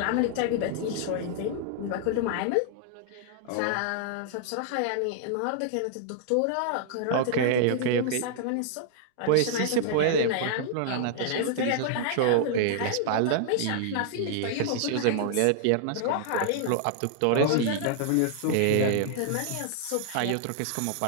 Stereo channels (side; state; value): both; different; correlation -0.01